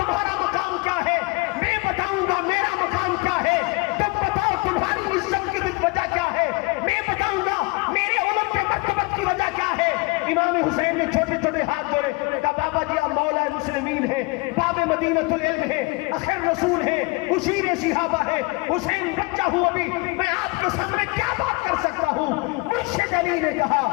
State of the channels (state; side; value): quieter; right; 26.5 dB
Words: مقام کیا ہے، میں بتاؤں گا میرا مقام کیا ہے۔ تم بتاؤ تمہاری عزت کی وجہ کیا ہے، میں بتاؤں گا میرے علم کے مرتبت کی وجہ کیا ہے۔ امام حسین نے چھوٹے چھوٹے ہاتھ جوڑے، کہا بابا جی آپ مولا مسلمین ہیں، باب مدینۃ العلم ہیں، آخر رسول ہیں، اشیر صحابہ ہیں، حسین بچہ ہوں ابھی، میں آپ کے سامنے کیا بات کر سکتا ہوں۔ مرشد علی نے